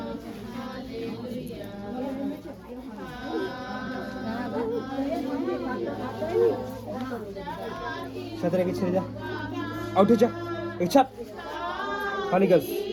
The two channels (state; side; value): identical; both; correlation 1.00